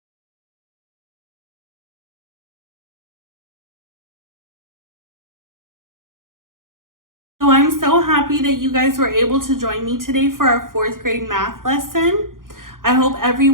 So I'm so happy that you guys were able to join me today for our 4th grade math lesson. I hope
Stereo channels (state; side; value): late; left; 0.90 ms